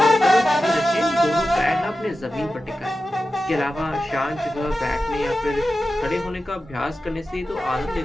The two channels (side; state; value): both; normal; correlation 0.93